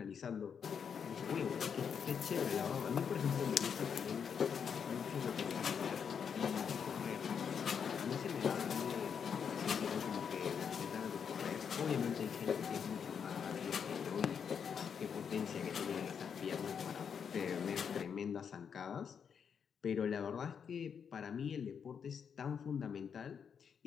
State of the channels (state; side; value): quieter; right; 7.1 dB